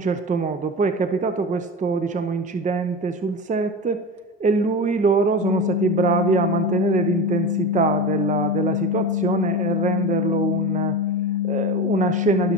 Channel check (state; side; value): normal; both; correlation 0.26